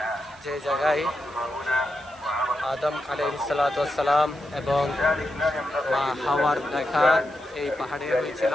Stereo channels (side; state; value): right; noise; hiss, 25 dB below the sound